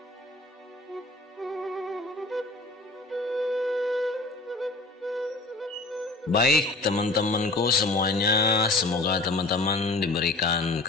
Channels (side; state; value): right; quieter; 3.3 dB